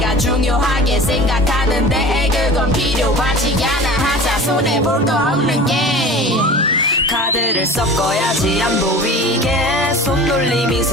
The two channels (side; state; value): both; normal; correlation 0.38